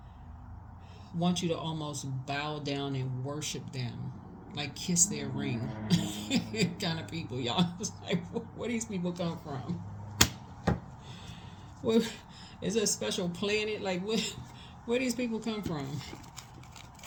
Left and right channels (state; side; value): identical; both; correlation 1.00